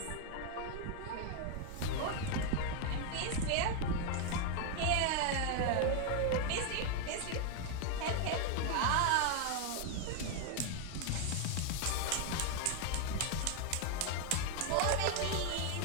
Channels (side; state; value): both; different; correlation 0.00